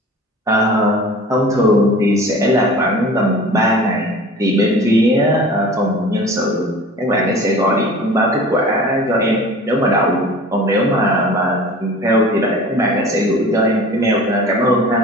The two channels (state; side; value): normal; both; correlation 0.41